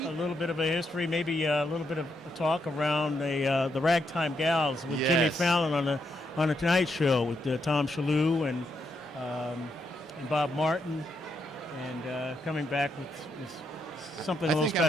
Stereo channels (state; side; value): normal; both; correlation 0.79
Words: A little bit of a history, maybe a little bit of a talk around the Ragtime Gals with Jimmy Fallon on the Tonight Show with Tom Shalhoub and Bob Martin, and coming back with something a little